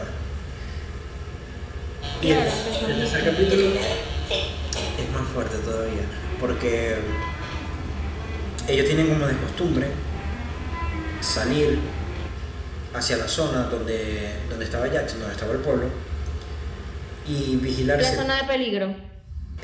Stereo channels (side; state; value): both; identical; correlation 1.00